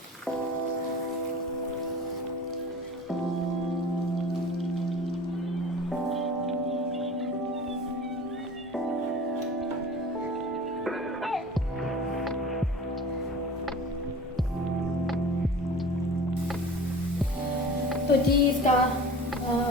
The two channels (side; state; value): both; normal; correlation 0.39